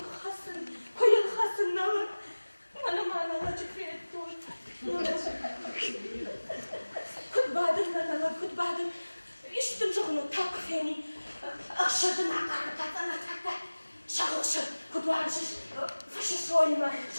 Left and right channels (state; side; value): inverted; both; correlation -1.00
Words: hasın, koyun hasın nalad. Mana mana lacık ettin. Kutbadır nalad, kutbadır. İştim çoğunu takfeni. Aşırdım akarı takta. Şahışı, kutbarsız. Fışı soyma,